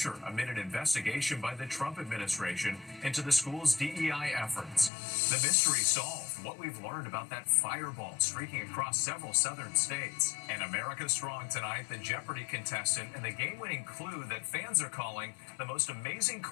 amid an investigation by the Trump administration into the school's DEI efforts. The mystery solved, what we've learned about that fireball streaking across several southern states. And America Strong tonight, the Jeopardy contestant and the game-winning clue that fans are calling the most amazing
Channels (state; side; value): drops out; right; at 4.9 s